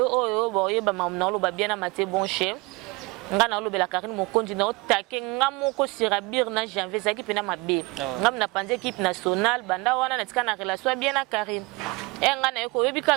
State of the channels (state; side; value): quieter; left; 24.9 dB